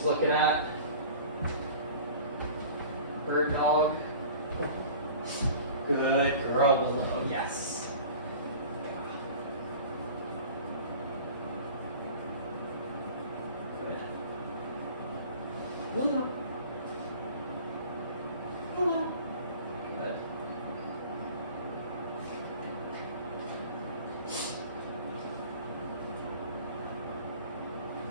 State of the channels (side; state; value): both; inverted; correlation -0.42